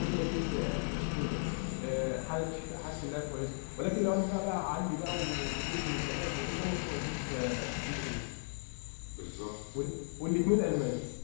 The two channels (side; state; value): right; silent; 54 dB below the other